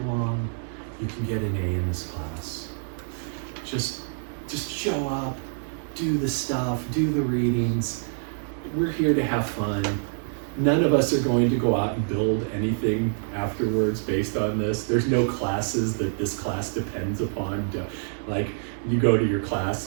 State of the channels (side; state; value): left; silent; digital silence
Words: you can get an A in this class. Just show up, do the stuff, do the readings. We're here to have fun. None of us are going to go out and build anything afterwards based on this. There's no classes that this class depends upon. Like, you go to your